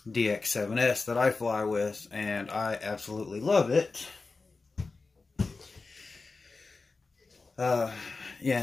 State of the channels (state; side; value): quieter; right; 3.9 dB